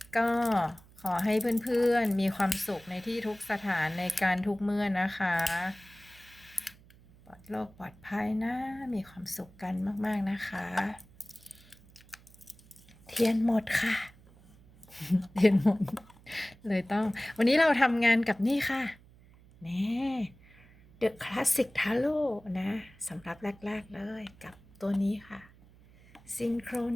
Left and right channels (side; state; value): right; noise; hum, 25 dB below the sound